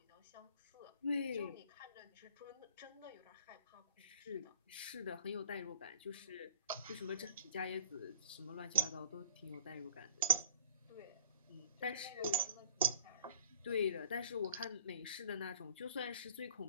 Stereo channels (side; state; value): both; inverted; correlation -0.56